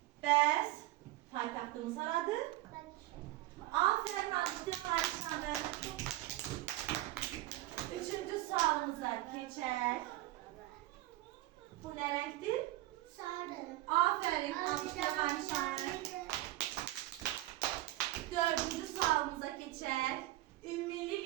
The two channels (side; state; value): left; quieter; 17.0 dB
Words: Bəs paytaxtımız haradır? Aferin alkışlayalım Ayşan'ı. Üçüncü sualımıza geçer. Bu ne renktir? Sarı. Aferin alkışlayalım Ayşan'ı. Dördüncü sualımıza geçer. Ümmili